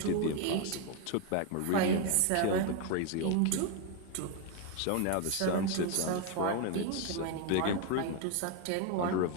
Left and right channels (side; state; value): both; different; correlation 0.01